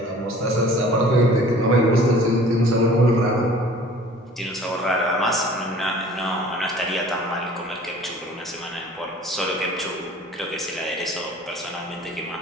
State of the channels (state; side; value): normal; both; correlation 0.48